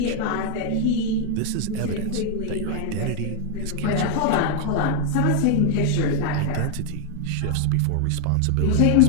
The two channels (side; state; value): both; different; correlation 0.00